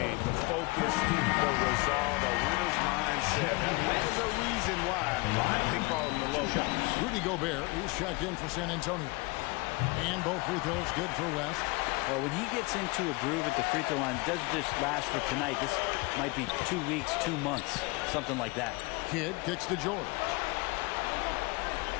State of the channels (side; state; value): right; quieter; 25.8 dB